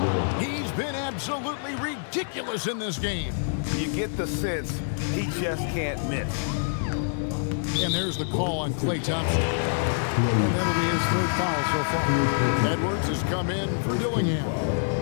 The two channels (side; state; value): right; silent; digital silence